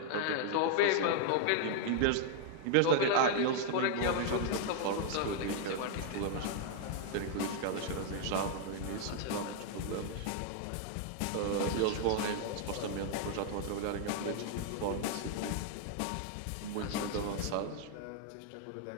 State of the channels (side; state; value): both; different; correlation 0.00